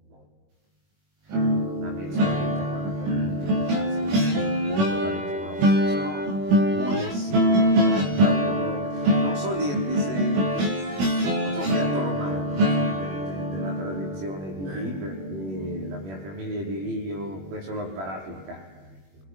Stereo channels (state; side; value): late; left; 21 ms